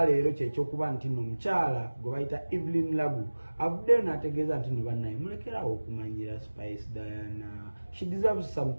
leero kyekyokuba nti no mukyala gwe bayita Evelyn Lagu avuddeyo n'ategeeza nti no bannaye mulekerawo okumanyira Spice Diana she deserves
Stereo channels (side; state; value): both; inverted; correlation -1.00